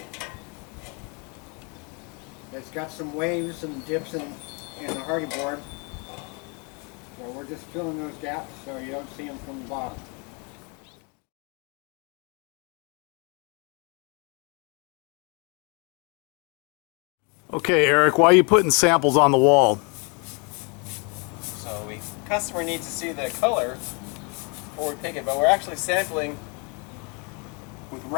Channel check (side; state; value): right; quieter; 33.5 dB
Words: It's got some waves and dips in the Hardie board. So we're just filling those gaps so you don't see them from the bottom. Okay, Eric, why are you putting samples on the wall? So the customer needs to see the color before we pick it, but we're actually sampling with